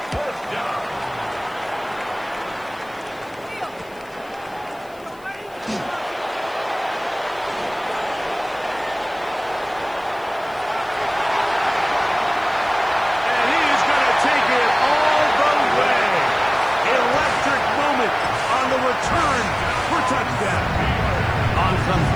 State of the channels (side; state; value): left; noise; hiss, 27 dB below the sound